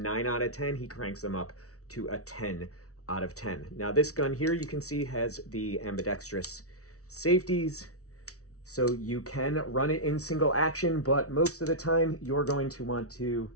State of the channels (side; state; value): right; late; 0.65 ms